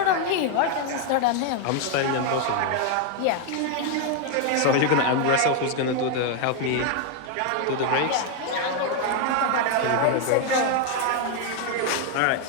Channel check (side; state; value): both; different; correlation 0.01